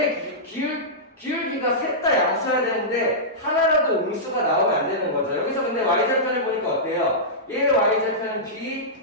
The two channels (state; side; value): normal; both; correlation -0.14